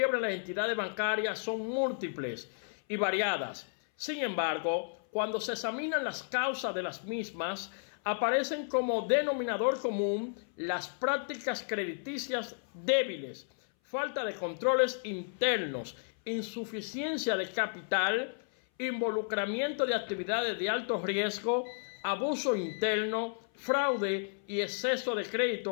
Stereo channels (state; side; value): silent; right; 56 dB below the other